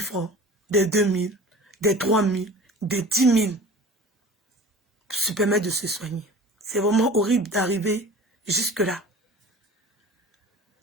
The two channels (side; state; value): both; normal; correlation 0.40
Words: des 2000, des 3000, des 10 000. Pour se permettre de se soigner. C'est vraiment horrible d'arriver jusque-là.